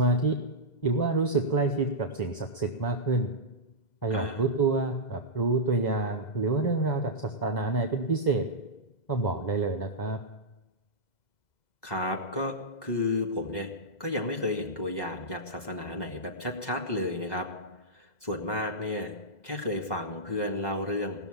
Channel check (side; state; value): right; late; 2.0 ms